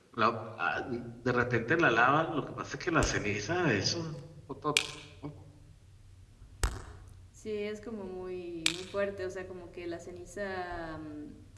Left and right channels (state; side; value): identical; both; correlation 1.00